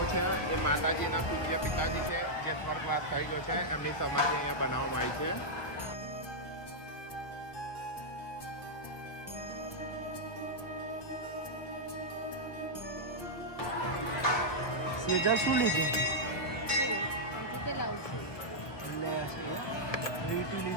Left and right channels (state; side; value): late; right; 1.2 ms